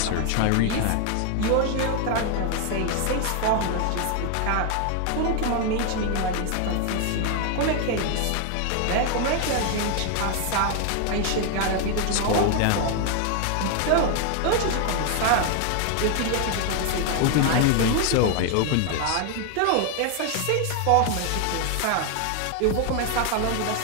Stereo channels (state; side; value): different; both; correlation 0.00